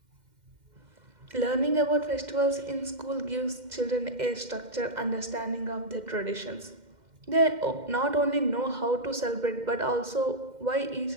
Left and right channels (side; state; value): left; late; 2.1 ms